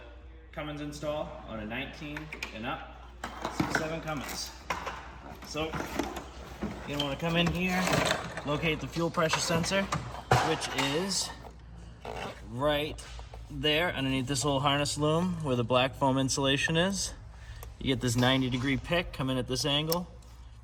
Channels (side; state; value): both; identical; correlation 1.00